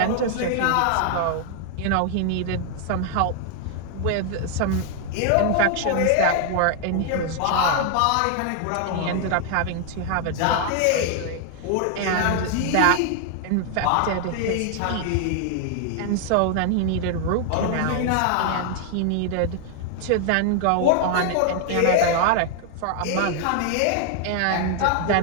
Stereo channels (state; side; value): different; both; correlation 0.00